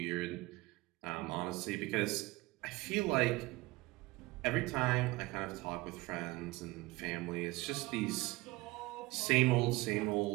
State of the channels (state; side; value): quieter; left; 21.1 dB